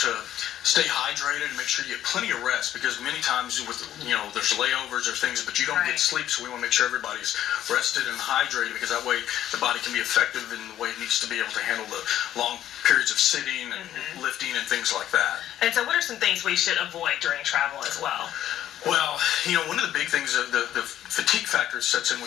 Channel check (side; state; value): right; quieter; 11.9 dB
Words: to stay hydrated and make sure you get plenty of rest, because many times with there's layovers or things, but you don't get sleep, so we want to make sure everybody's rested and hydrated, because that way the body can be effective in the way it needs to be able to handle the long periods of sitting and lifting and things like that. And so what are some things we should avoid during travel as well? Well, one of the big things, the fatigue factor sets in